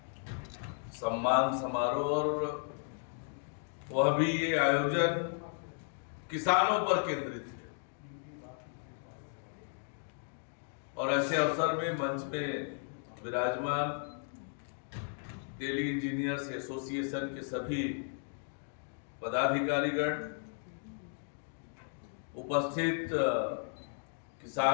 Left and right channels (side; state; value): right; silent; 55 dB below the other